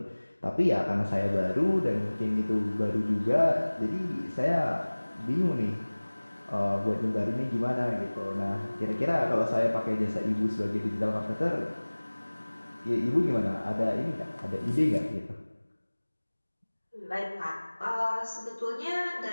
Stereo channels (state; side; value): inverted; both; correlation -1.00